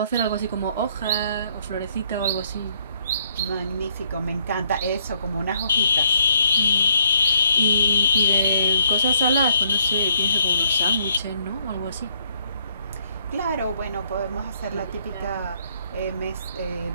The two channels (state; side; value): inverted; both; correlation -0.70